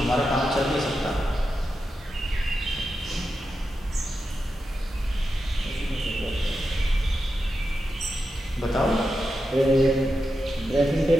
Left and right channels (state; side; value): normal; both; correlation 0.89